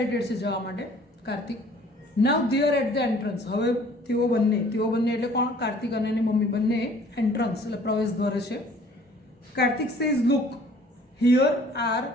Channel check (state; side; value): normal; both; correlation 0.54